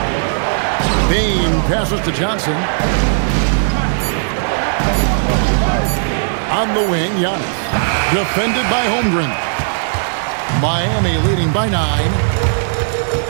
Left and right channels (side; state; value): left; silent; digital silence